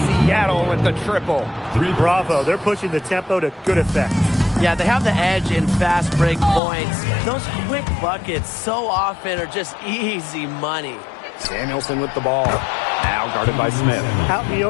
Seattle with the triple. Bravo. They're pushing the tempo to good effect. Yeah, they have the edge in fast break points. Those quick buckets so often are just easy money. Samuelson with the ball. Now guarded by Smith. Out in the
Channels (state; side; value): drops out; right; at 6.6 s